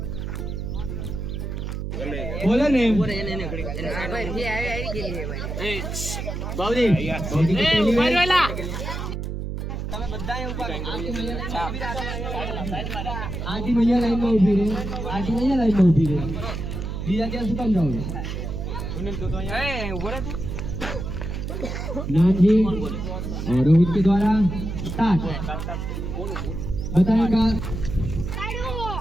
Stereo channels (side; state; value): right; noise; hum, 5 dB below the sound